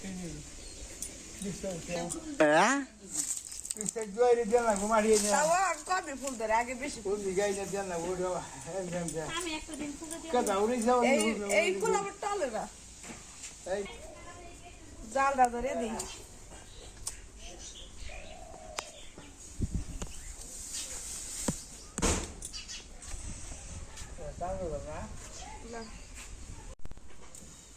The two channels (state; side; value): identical; both; correlation 1.00